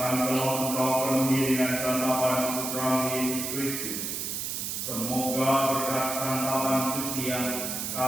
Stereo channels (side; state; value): right; noise; hiss, 3 dB below the sound